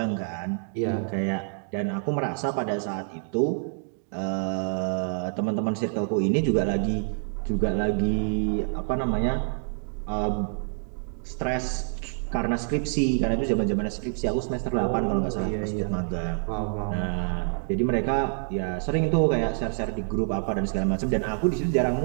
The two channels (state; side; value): silent; left; digital silence